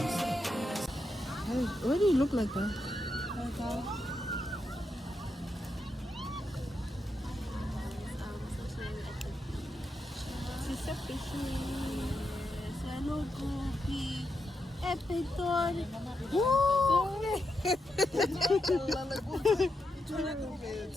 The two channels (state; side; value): normal; both; correlation 0.85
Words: do you look like that?